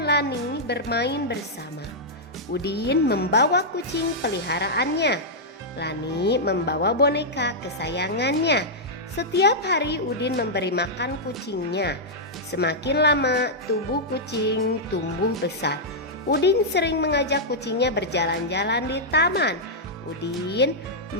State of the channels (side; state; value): both; normal; correlation -0.07